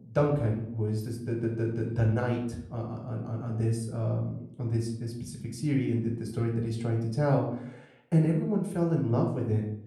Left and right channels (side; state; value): both; identical; correlation 1.00